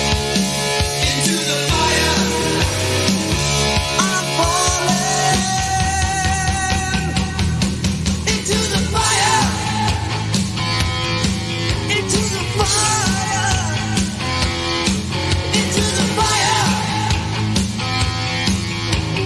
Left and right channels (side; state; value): both; identical; correlation 1.00